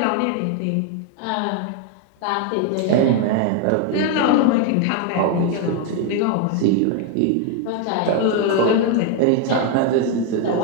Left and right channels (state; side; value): different; both; correlation 0.01